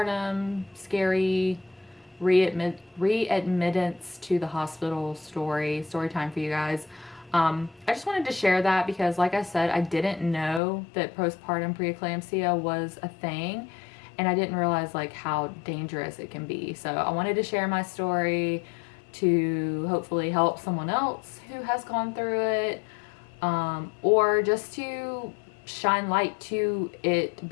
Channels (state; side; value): drops out; right; at 10.6 s